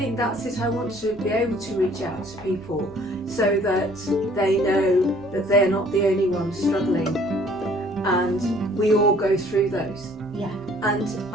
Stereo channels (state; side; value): noise; left; rumble, 27 dB below the sound